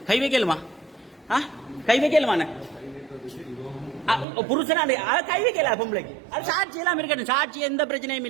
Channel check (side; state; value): left; drops out; at 4.2 s